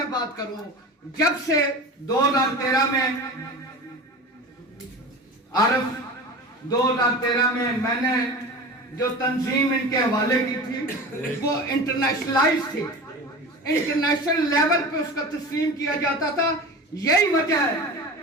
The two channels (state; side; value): normal; both; correlation 0.32